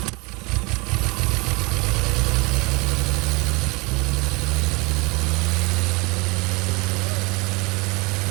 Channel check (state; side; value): quieter; left; 26.2 dB